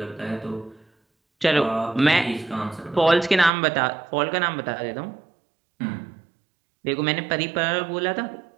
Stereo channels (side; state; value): left; drops out; at 3.5 s